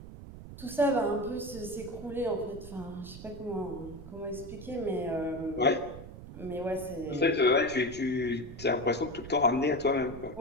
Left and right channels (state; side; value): noise; right; rumble, 13 dB below the sound